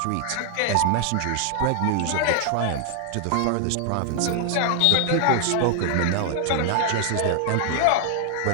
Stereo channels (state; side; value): different; both; correlation 0.00